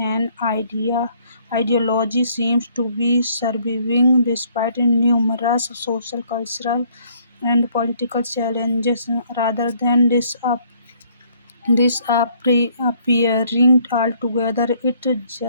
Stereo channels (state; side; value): inverted; both; correlation -0.64